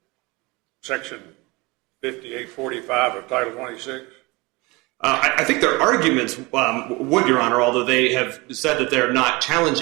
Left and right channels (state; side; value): quieter; left; 24.5 dB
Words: Section 5845 of Title 26? I think their arguments would, Your Honor, although they have said that they're not